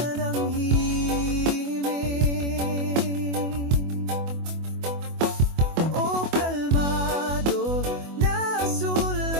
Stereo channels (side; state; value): left; late; 24 ms